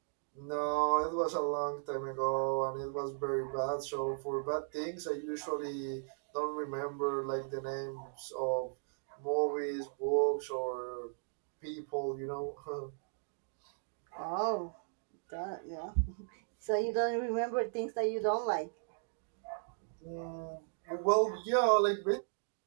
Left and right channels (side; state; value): left; silent; digital silence